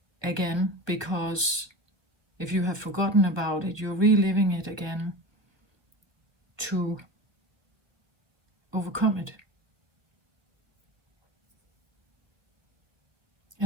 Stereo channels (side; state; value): left; late; 1.2 ms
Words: again, because if you have forgotten about it, you're reliving it again to overcome it.